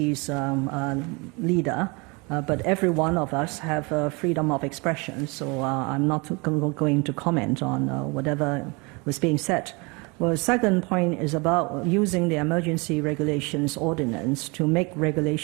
leader, but every one of us have freedom of expression, so I'm not going to comment on whatever was being said. Well, the second point is about using the emergency regulations ordinance to make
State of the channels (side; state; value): left; quieter; 28.6 dB